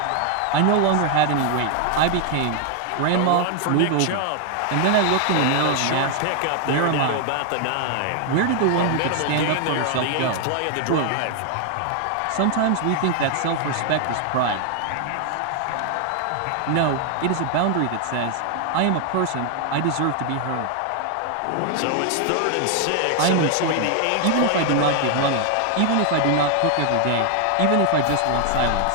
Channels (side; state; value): both; different; correlation 0.00